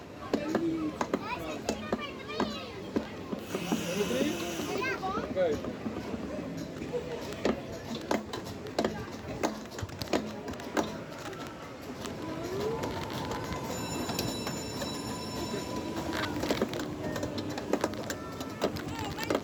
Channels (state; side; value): identical; both; correlation 1.00